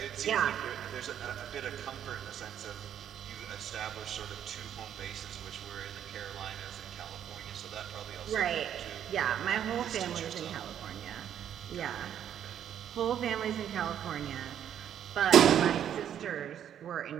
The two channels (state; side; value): quieter; left; 9.7 dB